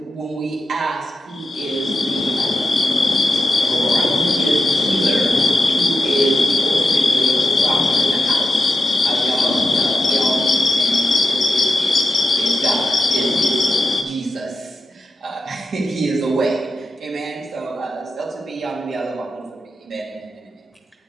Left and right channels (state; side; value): normal; both; correlation 0.88